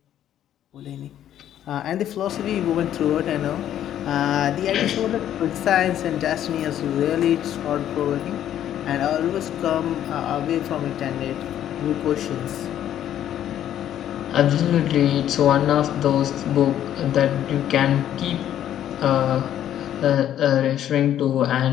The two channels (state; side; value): quieter; right; 11.1 dB